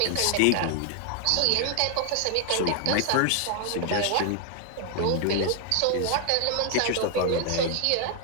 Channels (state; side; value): different; both; correlation 0.00